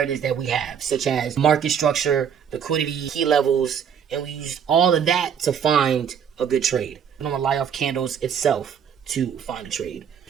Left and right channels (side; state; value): left; quieter; 7.9 dB